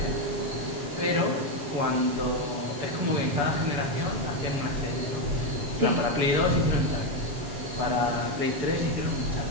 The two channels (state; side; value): late; left; 7.0 ms